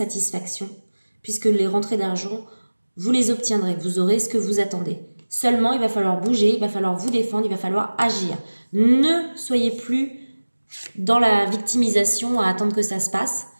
puisque les rentrées d'argent, vous les obtiendrez, vous aurez ce que vous attendez. Seulement, il va falloir bouger, il va falloir vous défendre, il va falloir agir. Ne soyez plus dans la victimisation à attendre que ça se passe.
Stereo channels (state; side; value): inverted; both; correlation -1.00